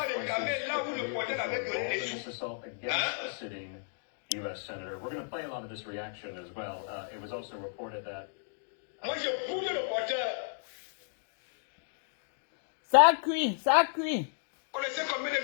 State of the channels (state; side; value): silent; right; digital silence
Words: réclamer là où le porteur avait donné les sous. U.S. Senator. We're going to play a lot of this reaction as well. It was also reported that. Moi, je pousse le porteur. Ça cuit, ça cuit. Vous connaissez combien de